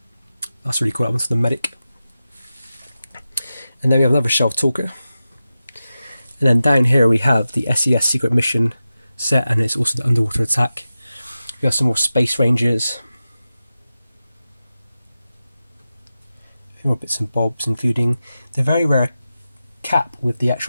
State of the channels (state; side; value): inverted; both; correlation -0.93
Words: That's really cool. That one's the medic. And then we have another shelf talker. And then down here we have the SES Secret Mission set, and it's also the Underwater Attack. We have some more Space Rangers. A few more bits and bobs, including the very rare cap with the